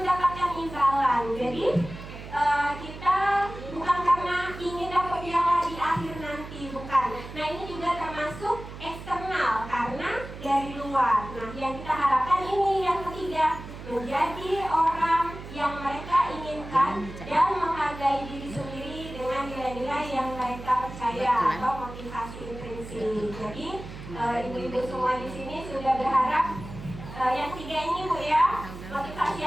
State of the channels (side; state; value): right; noise; hum, 12 dB below the sound